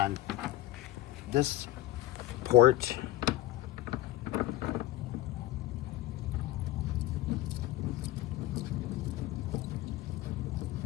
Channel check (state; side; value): quieter; right; 15.7 dB